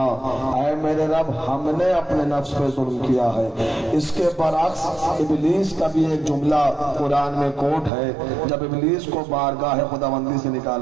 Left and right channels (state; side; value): drops out; left; at 7.9 s